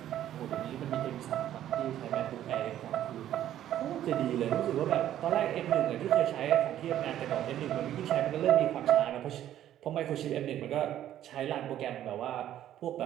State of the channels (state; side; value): quieter; left; 11.8 dB